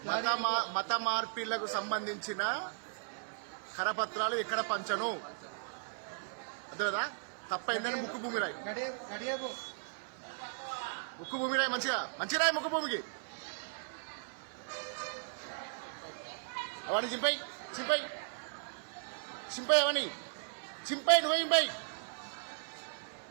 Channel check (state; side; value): silent; left; 53 dB below the other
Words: మత మార్పిళ్లకు సంబంధించిన కరపత్రాలు ఎక్కడ పంచను. అదే కదా తప్పైందని ముక్కు భూమి రాయి. ముక్కు భూమి రాయి మంచిగా మంచి రాయి. ముక్కు భూమికి అవన్నీ చింపై చింపై చింపై అవన్నీ చింపై నువ్వే చింపై.